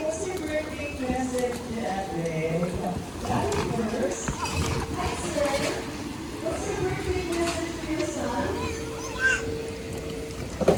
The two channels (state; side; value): identical; both; correlation 1.00